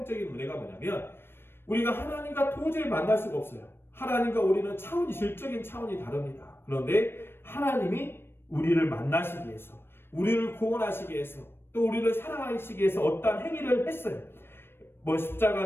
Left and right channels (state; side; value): late; right; 0.11 ms